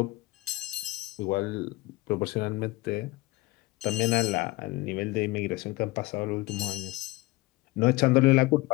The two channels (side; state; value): right; quieter; 20.8 dB